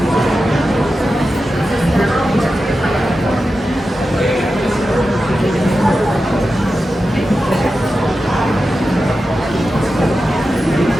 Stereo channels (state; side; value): normal; both; correlation 0.91